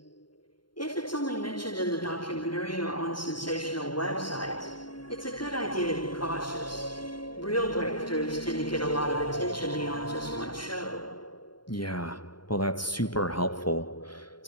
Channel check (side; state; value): right; late; 0.72 ms